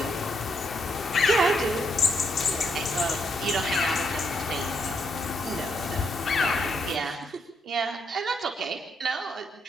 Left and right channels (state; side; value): normal; both; correlation 0.77